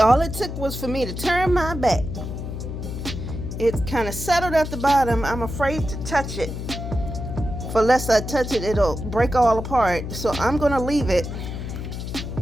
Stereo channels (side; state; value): left; noise; hum, 6 dB below the sound